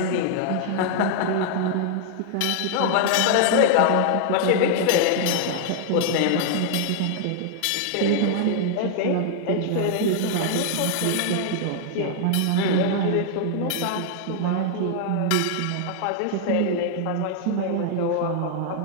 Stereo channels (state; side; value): different; both; correlation 0.00